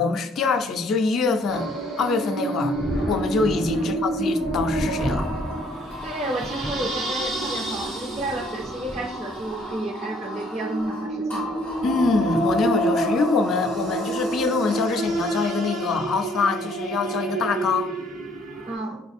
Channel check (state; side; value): normal; both; correlation 0.62